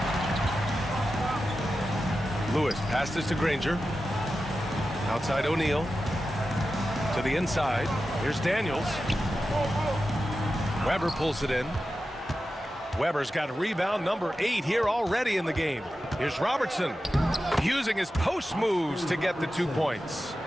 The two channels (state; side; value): normal; both; correlation 0.92